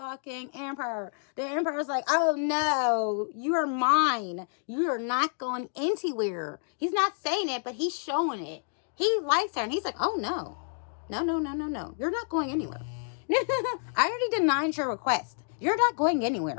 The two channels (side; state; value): right; silent; 59 dB below the other